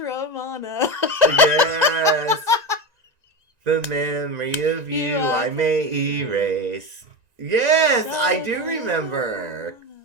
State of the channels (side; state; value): left; late; 1.9 ms